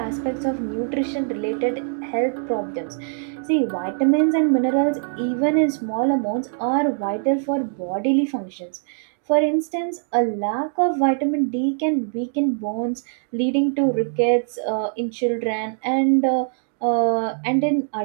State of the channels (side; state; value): left; silent; digital silence